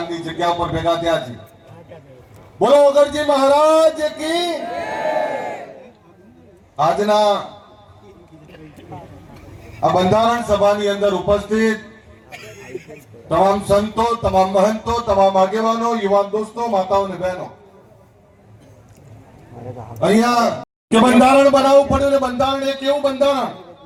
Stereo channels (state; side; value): identical; both; correlation 1.00